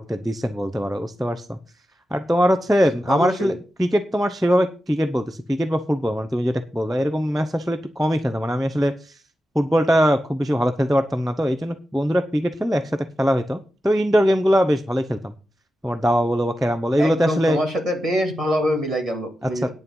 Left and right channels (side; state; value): both; normal; correlation 0.91